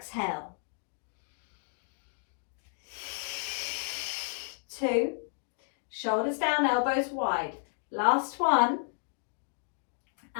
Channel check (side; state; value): right; silent; 56 dB below the other